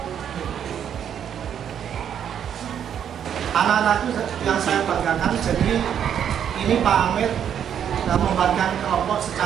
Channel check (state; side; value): quieter; left; 8.9 dB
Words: Anak-anakku yang saya banggakan, jadi ini Pak Hamid membagikan kelompok